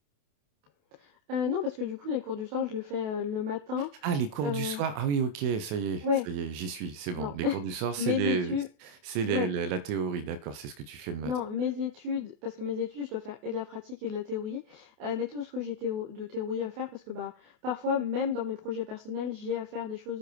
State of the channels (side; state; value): left; late; 28 ms